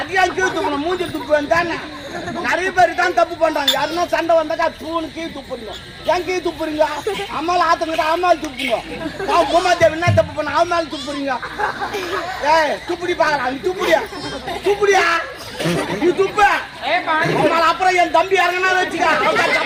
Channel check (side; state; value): both; identical; correlation 1.00